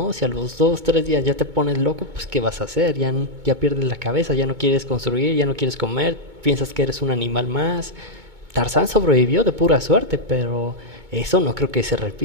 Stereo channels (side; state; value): left; late; 2.2 ms